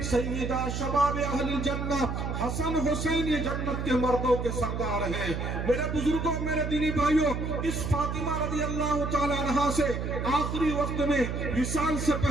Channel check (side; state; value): right; noise; hum, 3 dB below the sound